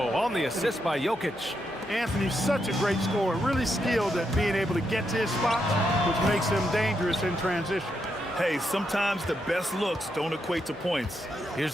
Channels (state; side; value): normal; both; correlation 0.81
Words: on the assist by Jokic. Anthony's such a great scorer, really skilled at being able to get to his spots, which makes him dangerous in transition. Hey, sometimes the best looks don't equate to points.